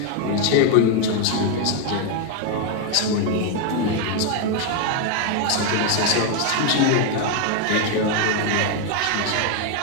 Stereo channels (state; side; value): different; both; correlation 0.01